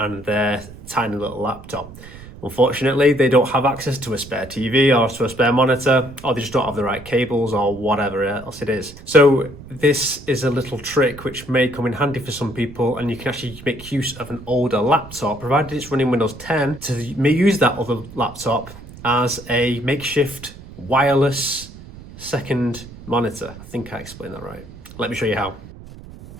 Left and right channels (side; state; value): right; noise; rumble, 17 dB below the sound